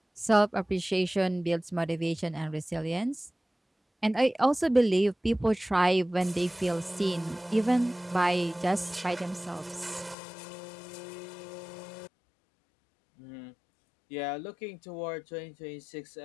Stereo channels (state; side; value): drops out; right; at 10.2 s